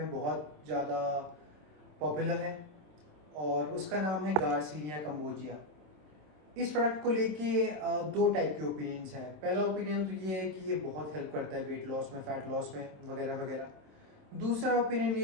बहुत ज़्यादा पॉपुलर है और उसका नाम है गार्सिनिया कंबोजिया। इस प्रोडक्ट को लेके दो टाइप के ओपिनियंस हैं। पहला ओपिनियन तो ये है कि ये बहुत हेल्प करता है वेट लॉस में, फैट लॉस में वगैरह वगैरह। दूसरा ओपिनियन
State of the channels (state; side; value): late; left; 27 ms